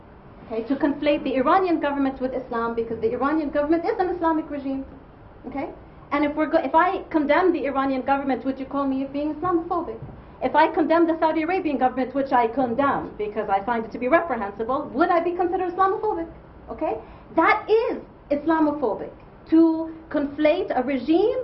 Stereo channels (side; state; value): both; identical; correlation 1.00